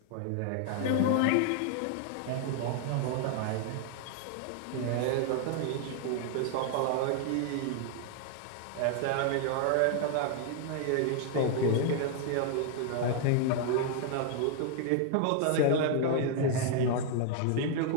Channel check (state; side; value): different; both; correlation 0.00